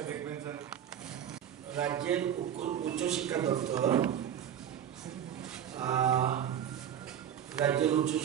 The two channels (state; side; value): quieter; left; 9.5 dB